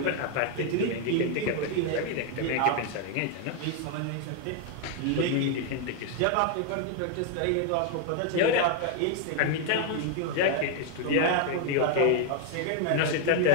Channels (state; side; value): different; both; correlation 0.00